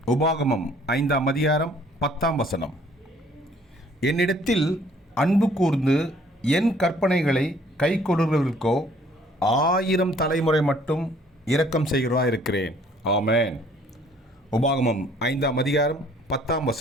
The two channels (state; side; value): normal; both; correlation 0.59